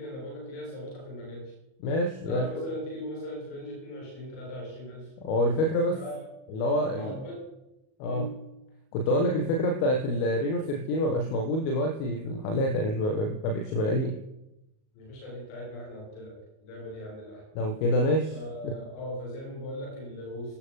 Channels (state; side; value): late; right; 38 ms